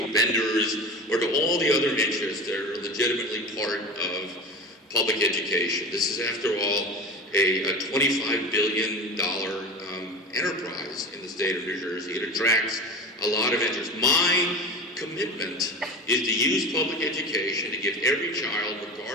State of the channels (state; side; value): normal; both; correlation 0.32